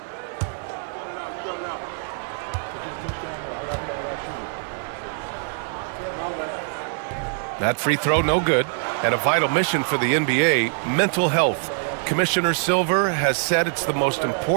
That free throw, no good. And a vital mission for the NBA, mental health. Commissioner Silver has said it's the most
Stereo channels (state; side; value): silent; left; 63 dB below the other